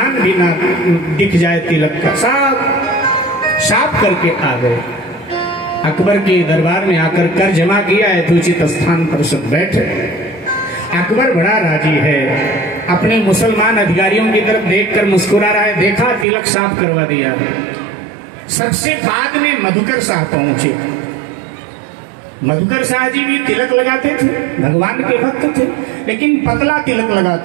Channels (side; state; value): left; drops out; at 16.2 s